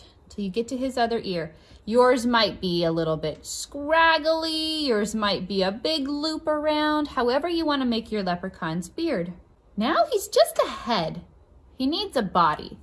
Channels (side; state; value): both; identical; correlation 1.00